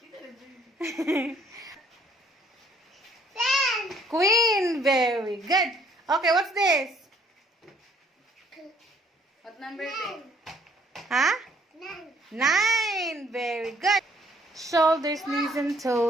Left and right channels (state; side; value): normal; both; correlation 0.63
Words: Queen. Very good. Okay, what's this? What number is it? Huh? 9. Very good. Shoulders, knees, and